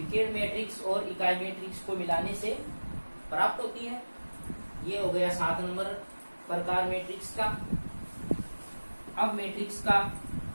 मैट्रिक्स और इकाई मैट्रिक्स को मिलाने से प्राप्त होती है। ये हो गया 7 नंबर प्रकार मैट्रिक्स का। अब मैट्रिक्स का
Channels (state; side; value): inverted; both; correlation -1.00